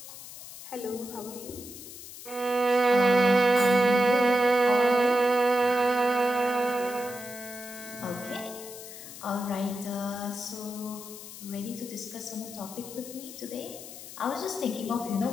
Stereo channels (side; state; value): left; noise; hiss, 14 dB below the sound